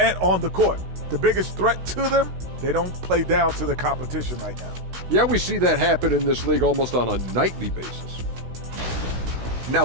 on the court. The biggest threat to them, they don't play down to the competition right now. Yeah, we see that happen in this league almost on a nightly basis.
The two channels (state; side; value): late; left; 16 ms